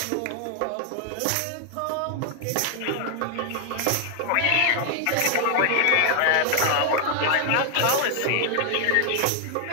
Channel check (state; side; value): different; both; correlation 0.00